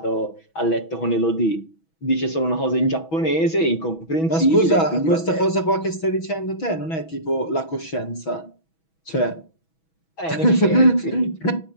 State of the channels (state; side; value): late; right; 6.2 ms